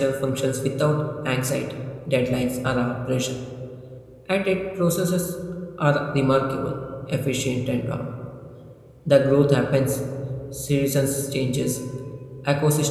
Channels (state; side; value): identical; both; correlation 1.00